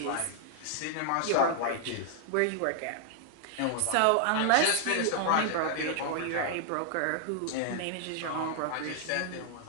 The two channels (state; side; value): different; both; correlation 0.00